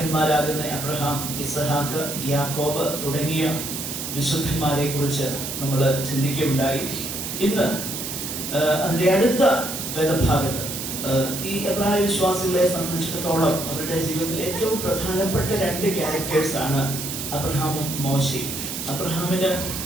അബ്രഹാം, ഇസഹാക്ക്, യാക്കോബ് തുടങ്ങിയ വിശുദ്ധന്മാരെ കുറിച്ച് നമ്മൾ ചിന്തിക്കുകയുണ്ടായി. ഇന്ന് അതിൻ്റെ അടുത്ത വേദഭാഗത്ത് ഈ എബ്രായ വിശ്വാസികളെ സംബന്ധിച്ചിടത്തോളം അവരുടെ ജീവിതത്തിൽ ഏറ്റവും പ്രധാനപ്പെട്ട 2 ക്യാരക്ടേഴ്സ് ആണ് അബ്രഹാമും മോശയും. അബ്രഹാമിന്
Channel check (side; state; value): right; noise; hiss, 5 dB below the sound